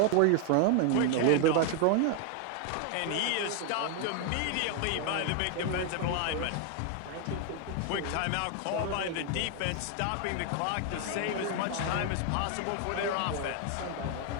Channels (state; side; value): different; both; correlation 0.00